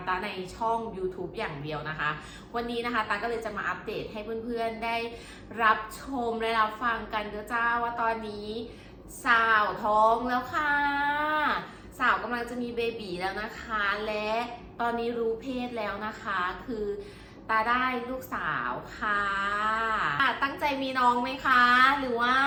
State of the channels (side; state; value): both; identical; correlation 1.00